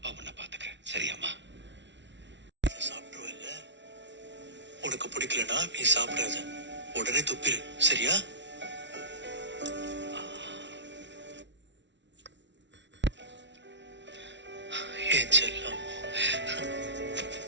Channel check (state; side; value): late; left; 0.52 ms